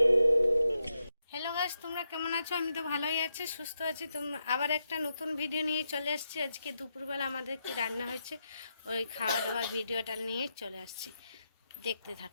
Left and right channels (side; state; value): both; inverted; correlation -0.84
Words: গাইস, তোমরা কেমন আছো? আমি তো ভালোই আছি, সুস্থ আছি। তোমরা আবার একটা নতুন ভিডিও নিয়ে চলে আসছি। আজকে দুপুরবেলা আমাদের কি রান্না হয়েছে ওই খাওয়া দাওয়ার ভিডিওটা নিয়ে চলে আসছি, দেখতে